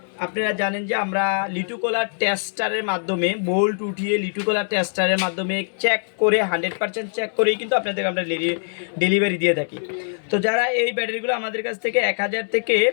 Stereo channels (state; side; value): silent; right; 64 dB below the other